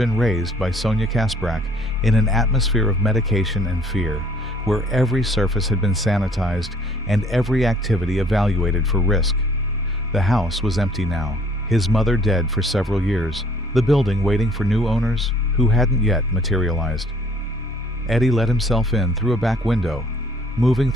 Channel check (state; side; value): normal; both; correlation 0.58